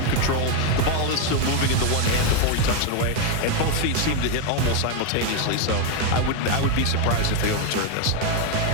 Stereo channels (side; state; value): both; different; correlation 0.02